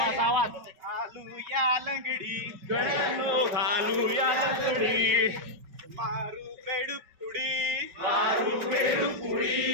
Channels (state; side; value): late; left; 5.3 ms